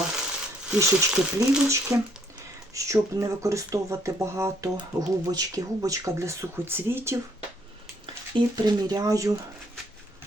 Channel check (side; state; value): both; normal; correlation 0.66